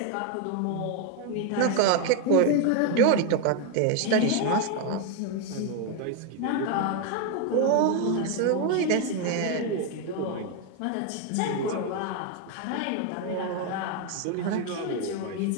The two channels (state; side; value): different; both; correlation 0.01